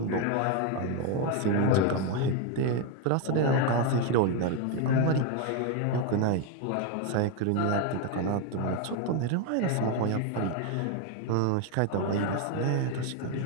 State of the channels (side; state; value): both; different; correlation 0.01